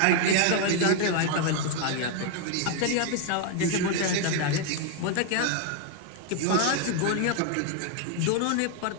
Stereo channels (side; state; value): both; different; correlation 0.01